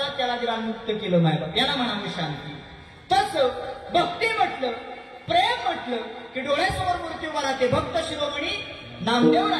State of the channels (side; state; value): both; identical; correlation 1.00